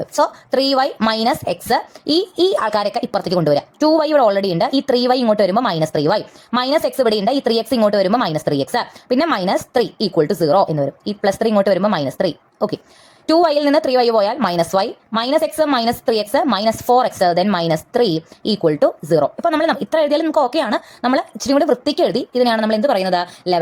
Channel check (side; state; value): both; identical; correlation 1.00